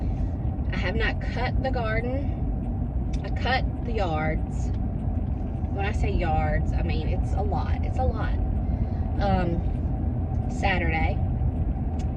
I have not cut the garden. I cut the yards. When I say yards, I mean it's a lot. It's a lot. Saturday,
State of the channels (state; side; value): identical; both; correlation 1.00